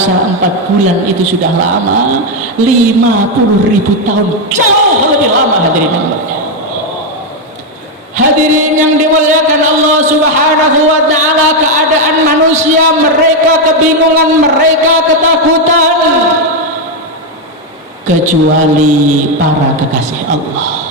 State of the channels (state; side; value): normal; both; correlation 0.04